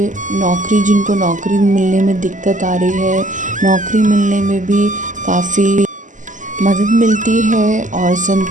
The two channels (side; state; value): left; late; 0.37 ms